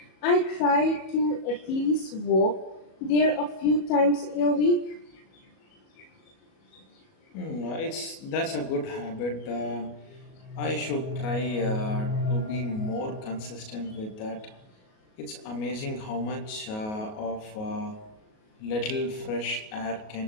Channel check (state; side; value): late; right; 37 ms